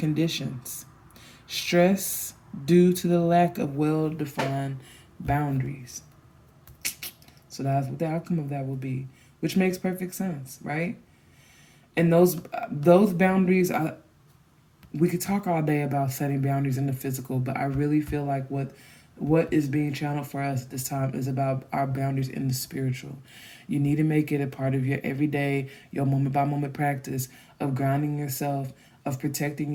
stress due to the lack of well-defined boundaries. So that's what the outcome of that will be, which makes perfect sense, right? And those boundaries, we could talk all day about setting boundaries in the physical, but I really feel like what is being channeled for us at this time is about our boundaries in the spiritual. You need to make it a part of your everyday, your moment by moment practice of grounding yourself, of protecting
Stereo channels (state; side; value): identical; both; correlation 1.00